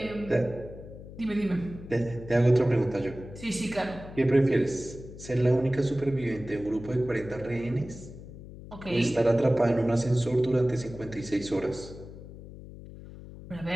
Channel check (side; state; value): left; noise; hum, 14 dB below the sound